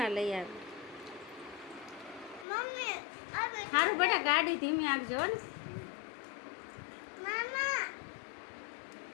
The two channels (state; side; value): drops out; right; at 2.5 s